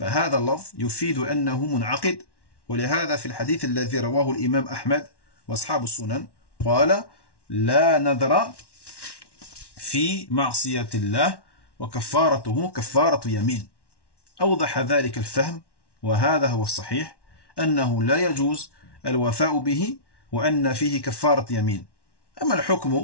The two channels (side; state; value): right; late; 1.1 ms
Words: اللفظ يفيد أنه منعقد ولهذا في الحديث الذي رواه الإمام أحمد وأصحاب السنن قال لا نذر في معصية الله وكفارته كفارة يمين أوضح ذلك الفهم وهذا هو الصحيح أنه لا يجوز الوفاء به وأن فيه كفارة يمين أما